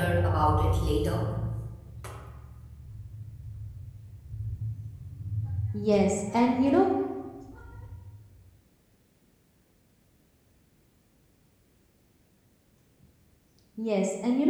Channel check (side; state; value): both; identical; correlation 1.00